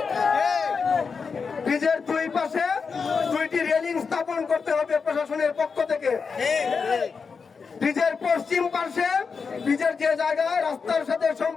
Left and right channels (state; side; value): quieter; right; 5.3 dB